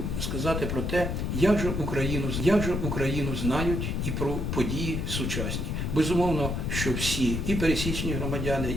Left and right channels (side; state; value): left; noise; rumble, 1 dB below the sound